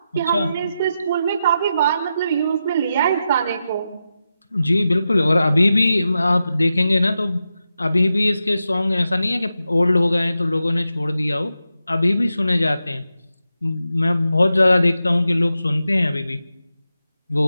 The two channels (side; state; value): both; inverted; correlation -0.89